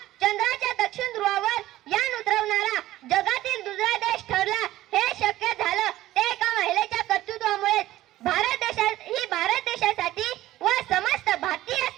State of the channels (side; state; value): left; quieter; 15.3 dB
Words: चंद्राच्या दक्षिण ध्रुवावर यान उतरवणारा जगातील दुसरा देश ठरला. हे शक्य झालं ते एका महिलेच्या कर्तृत्वामुळेच. भारत देशासाठी व समस्त भारतीय